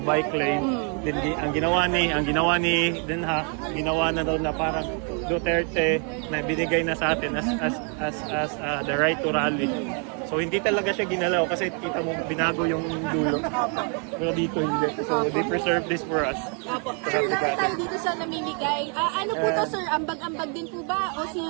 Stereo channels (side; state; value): left; quieter; 39.5 dB